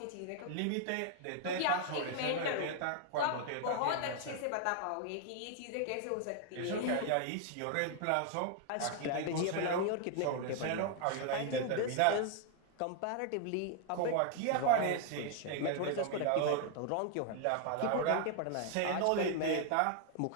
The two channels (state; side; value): different; both; correlation 0.00